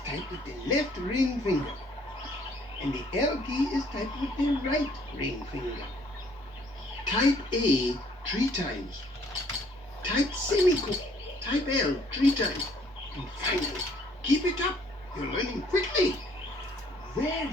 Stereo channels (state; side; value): normal; both; correlation 0.62